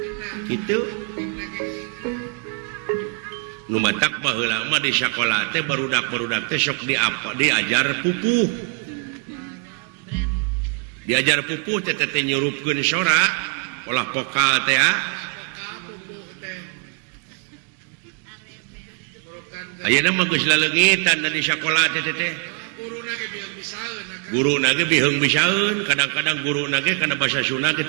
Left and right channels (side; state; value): left; quieter; 34.4 dB